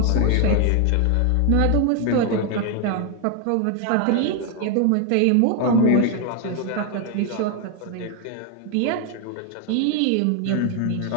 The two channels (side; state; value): both; different; correlation 0.01